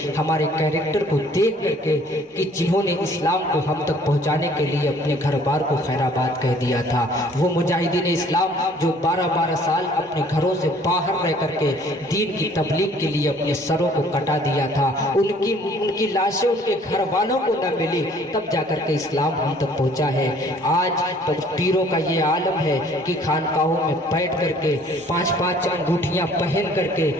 हमारे कैरेक्टर को देख करके, कि जिन्होंने इस्लाम को हम तक पहुंचाने के लिए अपने घर बार को खैराबाद कह दिया था। वो मुजाहिदीन इस्लाम जो 12-12 साल अपने घरों से बाहर रह करके दीन की तबलीग के लिए अपने सरों को कटा दिया था, उनकी लाशें उनके घर वालों को न मिली, तब जाकर के इस्लाम हम तक पहुंचा है। आज तो पीरों का ये आलम है कि खानकाहों में बैठ करके 5-5 अंगूठियां पहन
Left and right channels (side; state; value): both; normal; correlation 0.56